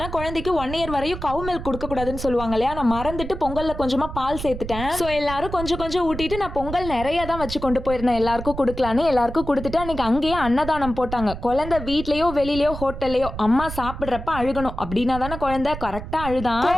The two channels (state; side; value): noise; right; rumble, 9 dB below the sound